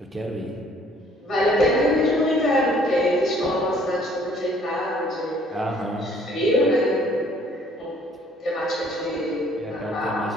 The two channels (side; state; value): both; normal; correlation 0.60